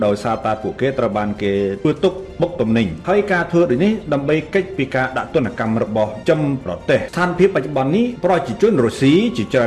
ដោយសារតែពួកគេត្រូវបានគេធ្វើទុកបុកទំនិញហើយការធ្វើដូចនេះដើម្បីកិច្ចពីការដាក់ទណ្ឌកម្មរបស់ចំប្រទេសស្ថានភាពបច្ចុប្បន្ននេះប្រជាជនរុស្ស៊ីជាច្រើ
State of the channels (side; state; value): both; identical; correlation 1.00